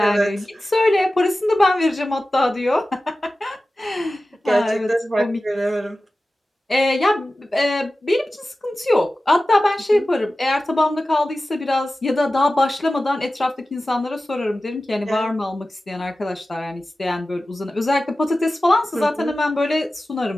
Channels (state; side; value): normal; both; correlation 0.95